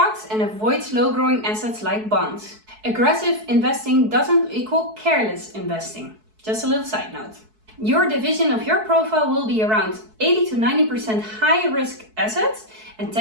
and avoid slow-growing assets like bonds. Aggressive investing doesn't equal careless investing. Just a little side note. Your division of your profile will be around 80 to 90% high-risk assets and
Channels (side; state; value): left; late; 4.6 ms